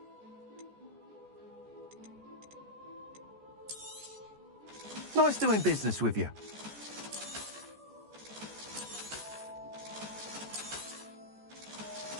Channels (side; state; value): left; late; 14 ms